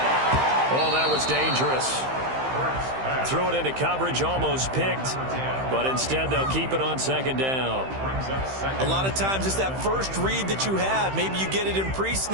Oh, that was dangerous. Threw it into coverage, almost picked, but instead they'll keep it on second down. A lot of times it's that first read that you have. Maybe you get it in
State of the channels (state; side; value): late; left; 15 ms